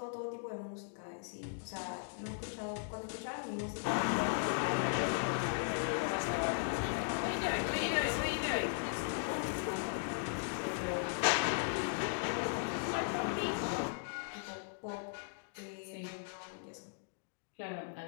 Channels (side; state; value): right; silent; digital silence